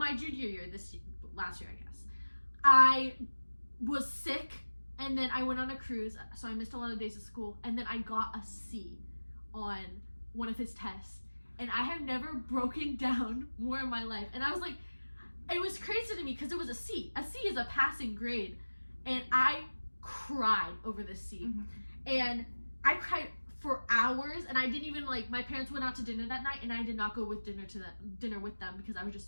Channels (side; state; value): both; inverted; correlation -1.00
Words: junior year, last year I guess, I was sick, and then I went on a cruise, so I missed a lot of days of school, and then I got a C on one of his tests, and I have never broken down more in my life. And I was like, it was crazy to me because it was a C. A C is a passing grade, and I cried over this C. And I cried for hours, and I didn't even like, my parents went out to dinner that night and I did not go with dinner with them because I was